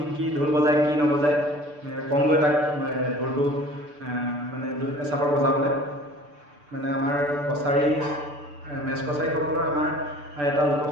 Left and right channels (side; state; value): left; late; 6.8 ms